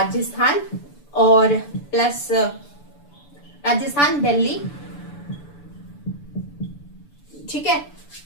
और प्लस राजस्थान, दिल्ली, ठीक है,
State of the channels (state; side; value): late; right; 6.9 ms